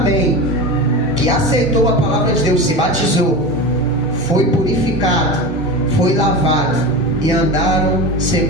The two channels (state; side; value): normal; both; correlation 0.26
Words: que aceitou a palavra de Deus, se batizou, foi purificado, foi lavado, e andaram